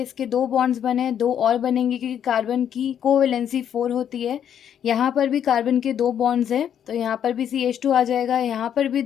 इसके 2 बॉन्ड्स बने, 2 और बनेंगे क्योंकि कार्बन की कोवैलेंसी 4 होती है। यहाँ पर भी कार्बन के 2 बॉन्ड्स हैं तो यहाँ पर भी CH2 आ जाएगा, यहाँ पर भी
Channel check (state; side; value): quieter; right; 9.2 dB